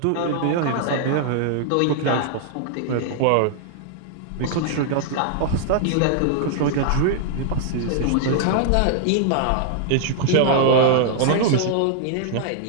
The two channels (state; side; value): different; both; correlation 0.00